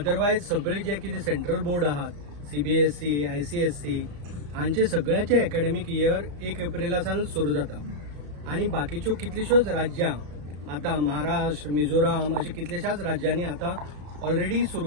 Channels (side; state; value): left; late; 34 ms